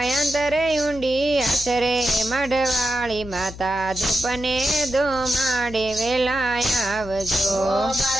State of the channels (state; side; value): noise; left; hum, 14 dB below the sound